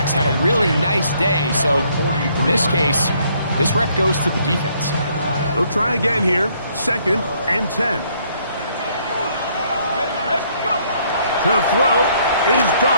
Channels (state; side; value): inverted; both; correlation -0.67